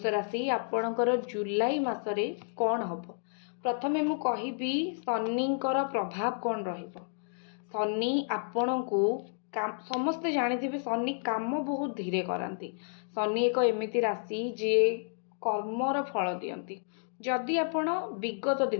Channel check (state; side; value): silent; right; digital silence